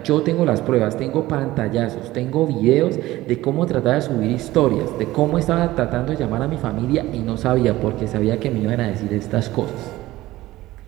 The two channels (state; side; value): quieter; left; 17.0 dB